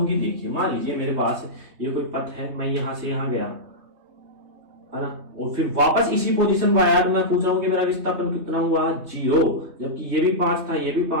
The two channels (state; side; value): late; left; 3.2 ms